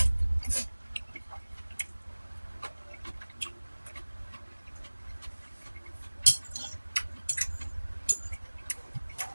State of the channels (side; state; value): both; inverted; correlation -1.00